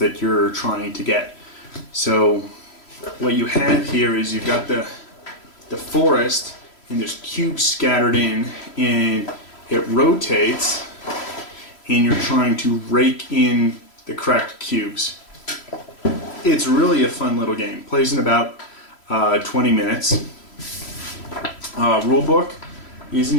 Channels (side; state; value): right; late; 3.0 ms